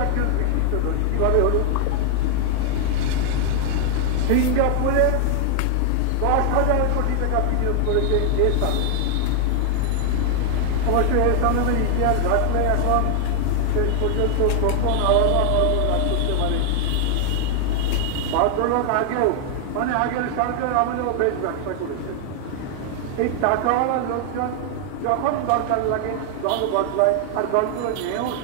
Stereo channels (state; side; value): different; both; correlation 0.00